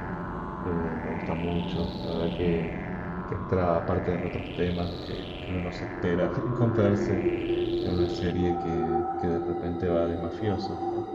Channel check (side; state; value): both; identical; correlation 1.00